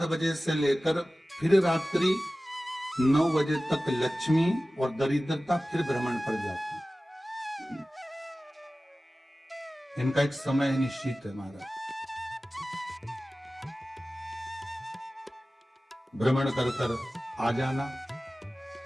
बजे से लेकर फिर रात्रि 9 बजे तक लक्ष्मी और दरिद्रता फिर भ्रमण पर जाती है। इनका एक समय निश्चित है महाराज, भ्रमण कर कर आ जाना।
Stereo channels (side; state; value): both; normal; correlation 0.96